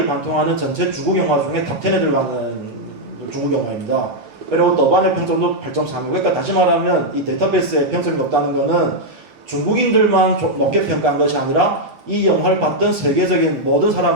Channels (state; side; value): late; left; 8.2 ms